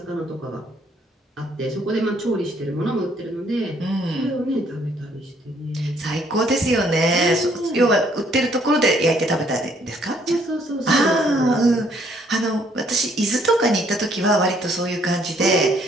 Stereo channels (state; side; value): normal; both; correlation 0.65